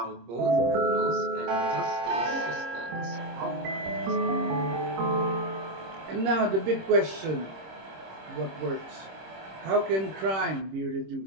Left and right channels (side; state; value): left; late; 26 ms